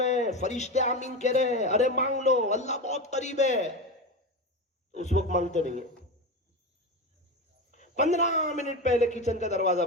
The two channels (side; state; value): both; normal; correlation 0.20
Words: ہیں، فرشتے آمین کہہ رہے ہیں، ارے مانگ لو، اللہ بہت قریب ہے۔ اس وقت مانگتے نہیں ہیں، 15 منٹ پہلے کچن کا دروازہ